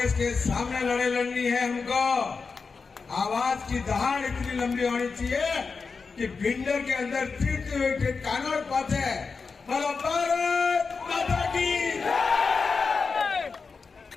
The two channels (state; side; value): quieter; right; 4.8 dB